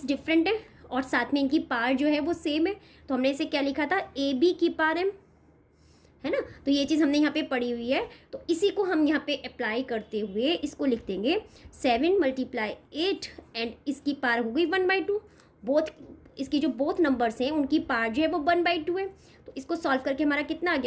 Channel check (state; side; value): identical; both; correlation 1.00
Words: डिफरेंट है और साथ में इनकी पावर जो है वो सेम है, तो हमने इसे क्या लिखा था, ab⁴m, है ना। तो ये चीज़ हमने यहाँ पे पढ़ी हुई है, तो इसी को हम यहाँ पे अप्लाई करते हुए इसको लिख देंगे 7 × 8 एंड इसकी पावर हो गई 1/2। बोथ इसकी जो बोथ नंबर्स हैं उनकी पावर जो है वो 1/2 है। तो इसको सॉल्व करके हमारा कितना आ